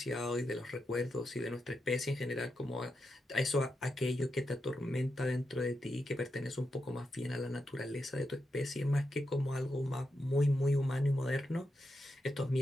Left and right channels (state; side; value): normal; both; correlation 0.86